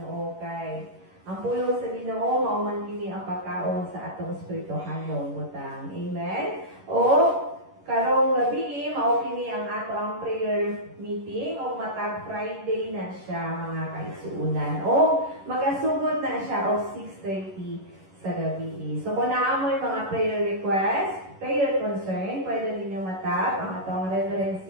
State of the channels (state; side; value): late; left; 11 ms